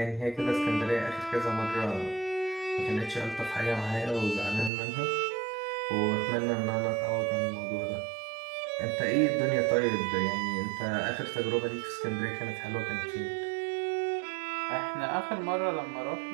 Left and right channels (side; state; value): left; drops out; at 4.7 s